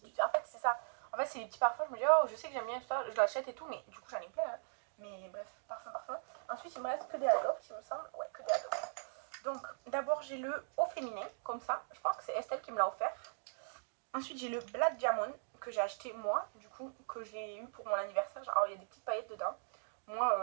En fait, c'est ça. En fait, c'est des petits parfums. Je me dis, oh, je sais que j'aime bien tout ça, je l'achète et tout, mais du coup, j'en ai plein. Hein. Mais bref, parfum. Ensuite, il me reste que des Adopt, il me semble. Ouais, que des Adopt. Donc, d'abord, j'ai le Eau Féminin, comme ça. Je pense que c'est Estelle qui me l'a offert. Ensuite, j'ai le Black Diamond, que j'ai acheté moi, du coup, que j'ai eu pour mon anniversaire. Alors, il y a des petites paillettes dedans.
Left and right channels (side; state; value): left; silent; digital silence